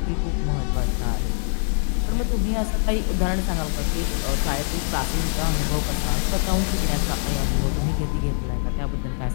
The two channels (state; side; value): silent; right; digital silence